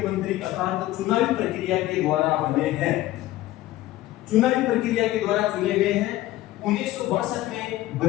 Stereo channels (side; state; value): right; quieter; 15.6 dB